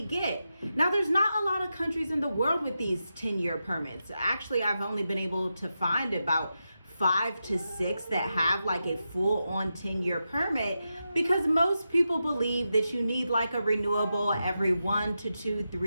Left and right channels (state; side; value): inverted; both; correlation -0.89